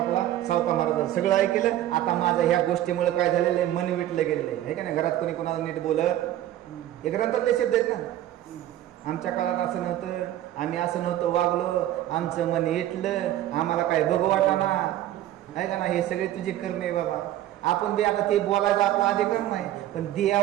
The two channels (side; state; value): left; quieter; 13.1 dB